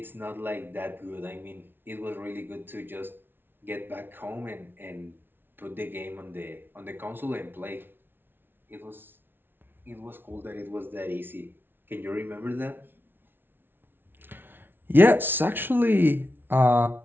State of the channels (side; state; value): left; late; 0.10 ms